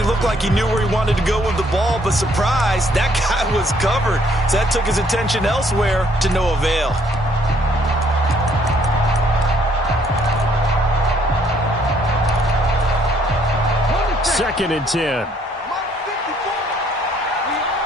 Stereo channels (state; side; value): normal; both; correlation 0.66